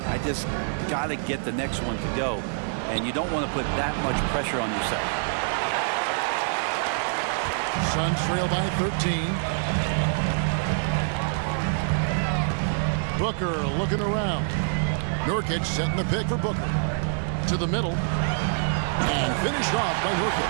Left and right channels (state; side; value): silent; left; digital silence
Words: I just got to get the next one to go. And you don't want to put that much pressure on yourself. Suns trail by 13. Booker looking around. Nurkic setting the pick for Booker. To the middle. And finished off by